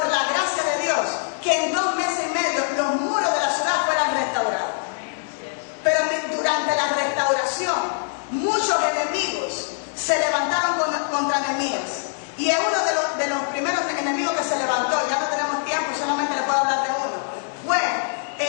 la gracia de Dios, que en 2 meses y medio los muros de la ciudad fueran restaurados. Pero durante la restauración, muchos enemigos se levantaron contra Nehemías. Y es uno de los primeros enemigos que se levantó. Ya no tenemos tiempo, solamente le puedo hablar de uno. Fue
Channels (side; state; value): right; silent; digital silence